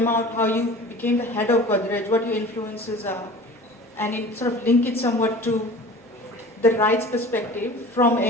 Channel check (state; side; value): normal; both; correlation 0.41